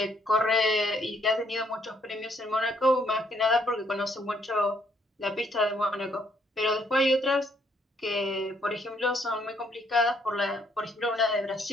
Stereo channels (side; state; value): both; normal; correlation 0.70